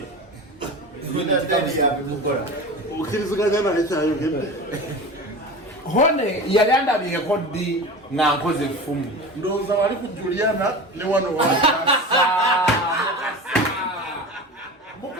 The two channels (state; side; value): normal; both; correlation 0.31